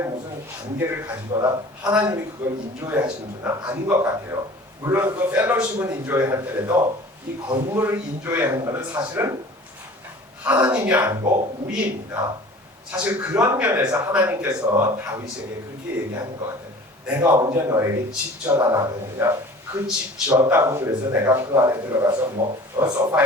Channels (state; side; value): normal; both; correlation 0.44